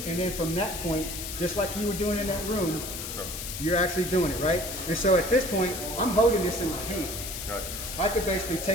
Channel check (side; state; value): left; noise; hiss, 7 dB below the sound